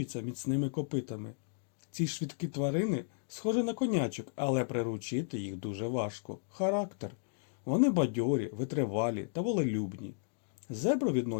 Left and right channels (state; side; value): silent; right; digital silence